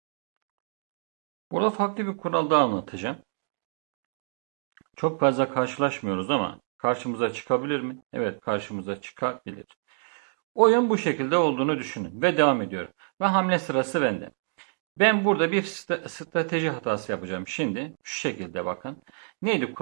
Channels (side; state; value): left; silent; digital silence